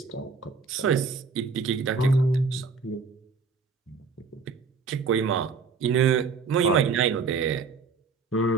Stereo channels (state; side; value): quieter; left; 4.9 dB